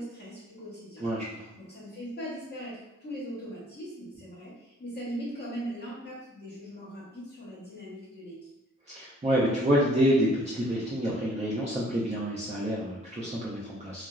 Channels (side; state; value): both; normal; correlation 0.59